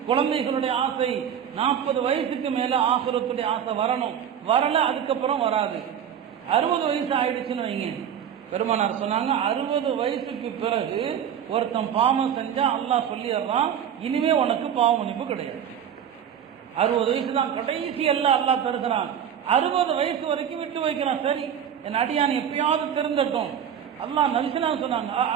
குழந்தைகளுடைய ஆசை. 40 வயசுக்கு மேல ஆசுரத்துடைய ஆசை வரணும். வரல அதுக்கப்புறம் வராது. 60 வயசு ஆயிடுச்சுன்னு வைங்க, பெருமானார் சொன்னாங்க 60 வயசுக்கு பிறகு ஒருத்தன் பாவம் செஞ்சா அல்லாஹ் சொல்லிடுறான், இனிமே உனக்கு பாவ மன்னிப்பு கிடையாது. 60 வயசு தான் கடைசி எல்லாம் அல்லாஹ் தருகிறான். 60 வயசு வரைக்கும் விட்டு வைக்கிறான். சரி, என் அடியான் எப்பயாவது திருந்தட்டும். அல்லாஹ் நல்சினா சொன்னாங்க,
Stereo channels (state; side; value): quieter; left; 8.9 dB